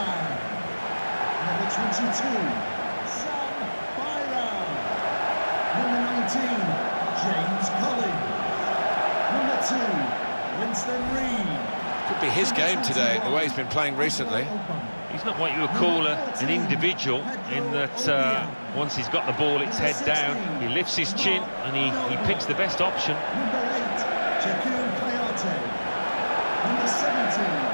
Number 22, Sam Byram. Number 19, James Collins. Number 2, Winston Reid. Could be his game today, the way he's been playing recently. He's not what you would call an individual, in that once he's got the ball, it's head down, he lifts his chin and he picks the best option. Number 8, Jakub Kayate. Number 17,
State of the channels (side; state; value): both; inverted; correlation -1.00